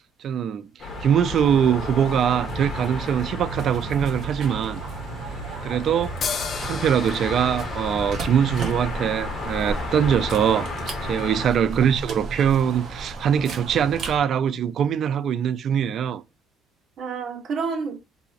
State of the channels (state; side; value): quieter; left; 6.8 dB